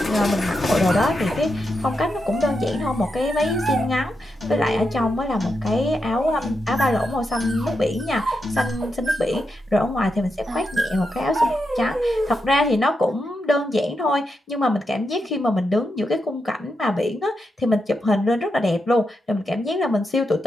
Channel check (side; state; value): both; normal; correlation 0.85